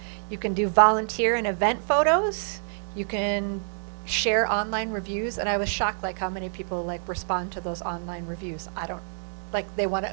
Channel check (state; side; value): silent; left; 60 dB below the other